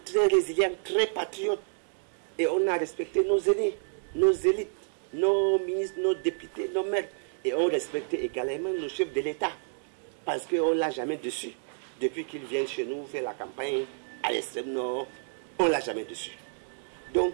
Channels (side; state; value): left; silent; digital silence